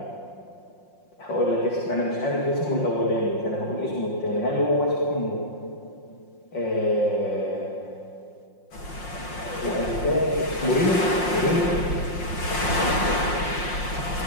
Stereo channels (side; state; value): right; late; 5.6 ms